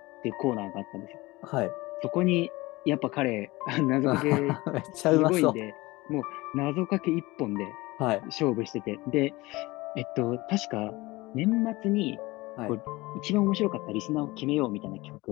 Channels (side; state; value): right; quieter; 21.1 dB